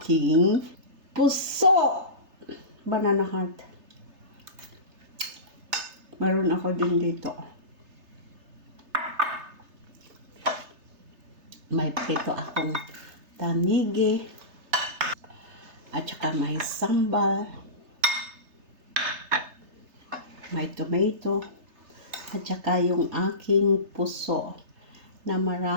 puso. Banana heart. Meron ako din dito. May prito akong tanigi. At saka may sambal. May tomato. At saka yung aking puso na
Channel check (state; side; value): late; left; 3.3 ms